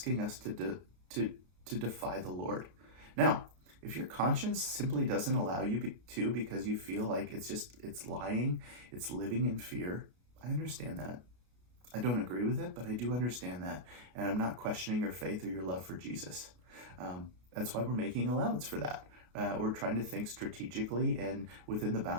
us to defy the Lord. Now, if your conscience simply doesn't allow you to because you feel like it's lying, it's living in fear, I understand that. I don't agree with it, but I do understand that. And I'm not questioning your faith or your love for Jesus. That's why we're making allowance for that. We're trying to think strategically and within the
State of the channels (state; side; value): late; left; 33 ms